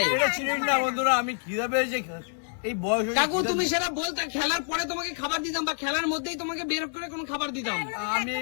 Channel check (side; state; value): right; silent; digital silence